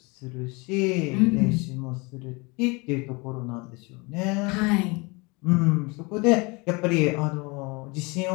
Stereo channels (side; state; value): right; quieter; 27.5 dB